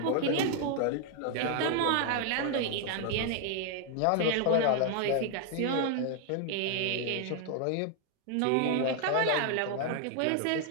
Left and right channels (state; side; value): different; both; correlation 0.00